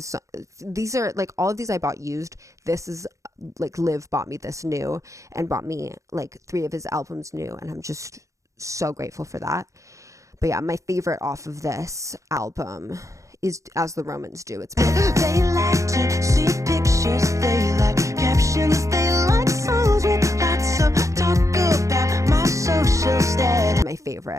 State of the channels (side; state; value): left; late; 0.15 ms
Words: These are, like, all of these I bought used. This is, like, Liv bought me this new, and bought me, like, 3 of his albums new, and I'm just so grateful for that. But yeah, my favorite off of this album is As the Romans Do. It's They like to see pictures, they like captions, they like songs with lots of talk about my social status. my